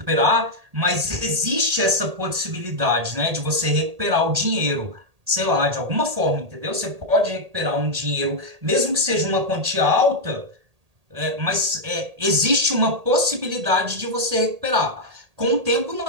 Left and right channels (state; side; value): late; left; 1.8 ms